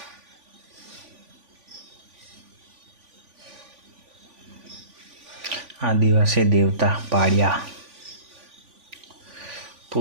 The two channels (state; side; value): late; left; 3.5 ms